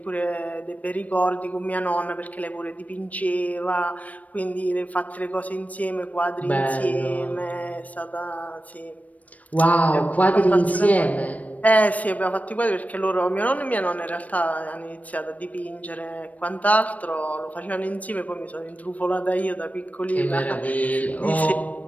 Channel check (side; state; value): right; late; 0.070 ms